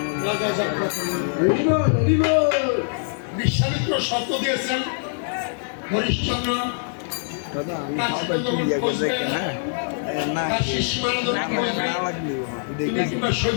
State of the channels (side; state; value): right; silent; digital silence